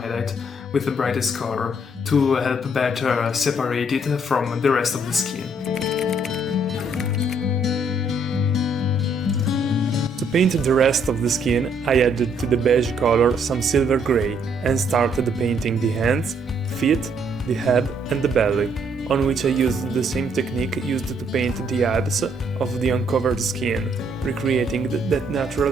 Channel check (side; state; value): both; normal; correlation 0.68